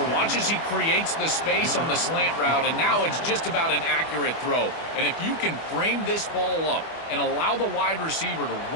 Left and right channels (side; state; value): right; late; 25 ms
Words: Watch as he creates the space on the slant route, and now it's just about an accurate throw. And if you can frame this ball up and allow the wide receiver to